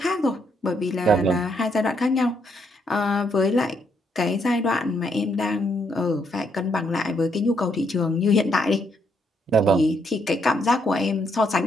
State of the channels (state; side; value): normal; both; correlation 0.74